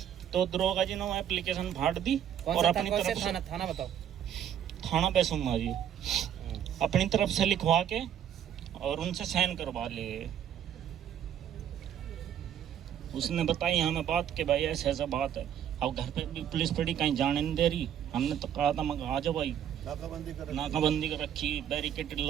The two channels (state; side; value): quieter; left; 9.8 dB